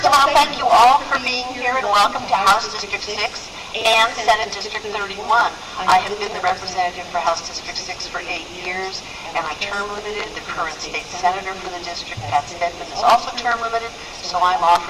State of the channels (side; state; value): both; identical; correlation 1.00